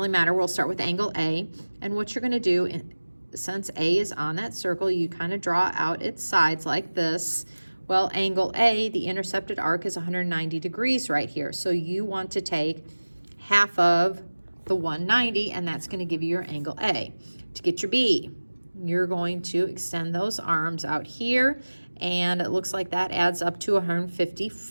matter. We'll start with angle A, and what you're going to do, since A is on that circle, you kind of draw out its sides like this. Well, angle A, the intercepted arc, is 190 degrees right here. So you want to take half of the 190, and that's going to give you your angle A. To get your B, you're going to extend those arms out here, and it looks like that adds up to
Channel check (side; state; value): both; inverted; correlation -1.00